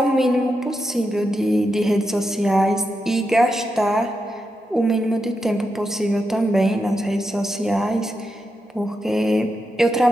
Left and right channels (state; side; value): normal; both; correlation 0.86